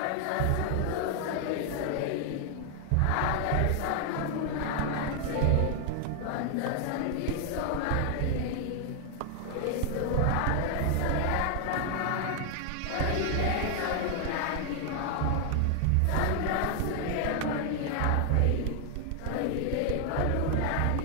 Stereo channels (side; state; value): both; different; correlation 0.00